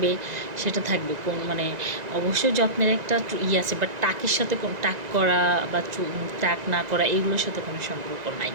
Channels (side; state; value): left; late; 1.9 ms